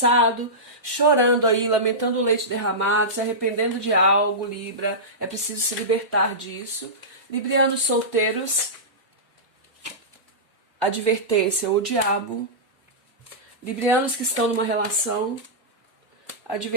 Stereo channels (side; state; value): both; normal; correlation -0.16